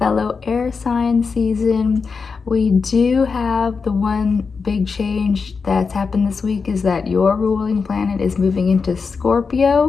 air sign season. We do have the one big change that's happened this week is that your ruling planet is moving into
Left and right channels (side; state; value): right; quieter; 5.1 dB